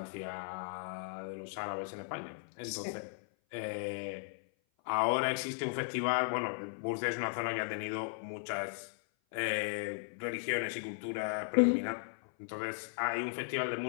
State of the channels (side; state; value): right; silent; 53 dB below the other